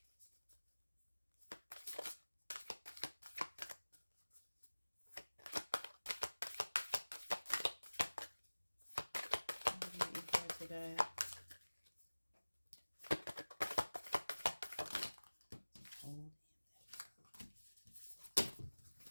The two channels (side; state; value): both; inverted; correlation -1.00